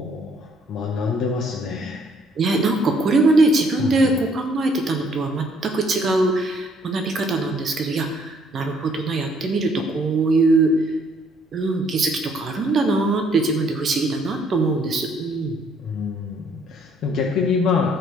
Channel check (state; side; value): normal; both; correlation 0.65